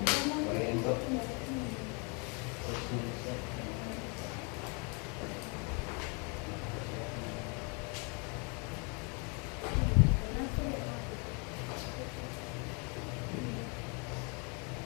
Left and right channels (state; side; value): quieter; right; 34.3 dB